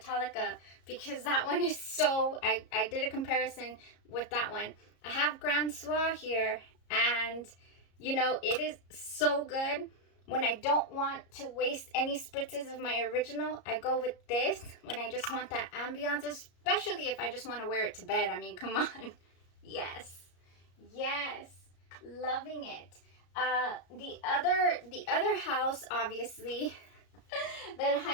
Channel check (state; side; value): late; right; 34 ms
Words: because that one is so, I did a comparison with that one. I have Grand Soir here, and you know, it is so good. When I don't want to waste any spritzes of my original, I go with this when I just want that ambiance, especially if I just want to wear it to bed. I mean, come on. Yes, loving it. The other house, obviously, that I